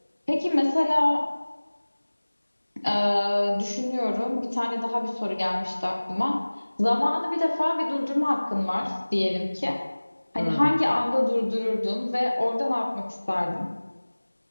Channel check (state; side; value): inverted; both; correlation -1.00